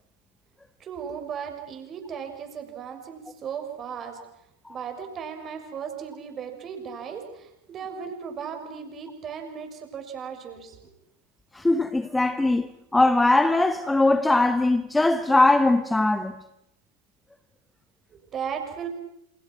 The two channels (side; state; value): both; normal; correlation 0.92